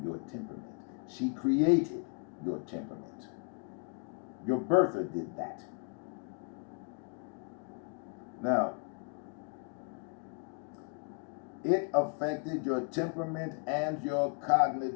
your temperament. She created your temperament. Your birther did that. Now, it affected your temperament and your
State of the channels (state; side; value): quieter; right; 36.8 dB